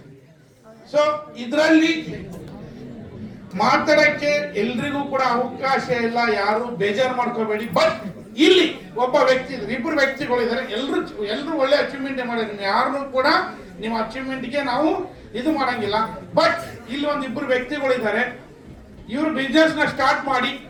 so ಇದರಲ್ಲಿ ಮಾತಾಡಕ್ಕೆ ಎಲ್ರಿಗೂ ಕೂಡ ಅವಕಾಶ ಇಲ್ಲ, ಯಾರು ಬೇಜಾರು ಮಾಡ್ಕೋಬೇಡಿ. ಬಟ್ ಇಲ್ಲಿ ಒಬ್ಬ ವ್ಯಕ್ತಿ ಇದ್ದಾರೆ, ಇಬ್ಬರು ವ್ಯಕ್ತಿಗಳಿದ್ದಾರೆ, ಎಲ್ರು ಒಳ್ಳೆ ಅಚೀವ್ಮೆಂಟ್ ಮಾಡಿದ್ರೆ ಯಾರನ್ನು ಕೂಡ ನಿಮ್ಮ ಅಚೀವ್ಮೆಂಟ್ಗೆ ನಾವು ಇದು ಮಾಡಂಗಿಲ್ಲ. ಬಟ್ ಇಲ್ಲಿ ಒಂದಿಬ್ಬರು ವ್ಯಕ್ತಿಗಳಿದ್ದಾರೆ, ಇವರು ಬಿಸ್ನೆಸ್ ನ ಸ್ಟಾರ್ಟ್ ಮಾಡಿ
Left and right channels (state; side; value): identical; both; correlation 1.00